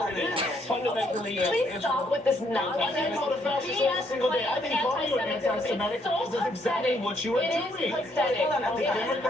it is. Fundamentally, Please stop with this nonsense. I call the fascists every single day. I think calling you an anti-Semitic is exactly what you are It doing. is pathetic. The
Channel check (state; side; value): normal; both; correlation 0.71